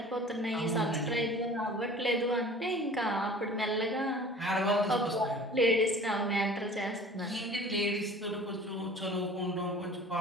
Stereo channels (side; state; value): both; normal; correlation 0.45